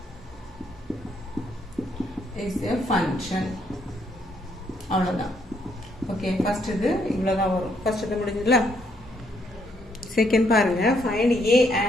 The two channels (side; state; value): both; normal; correlation 0.72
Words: a function அவ்வளவுதான் ஓகே ஃபர்ஸ்ட் இது இவ்வளவுதான் வரும் ஃபர்ஸ்ட் இது முடிஞ்சதுல செகண்ட் பாருங்க ஃபைண்ட் ஏ